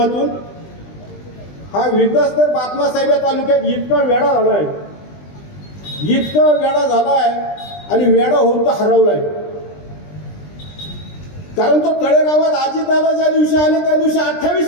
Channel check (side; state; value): right; late; 20 ms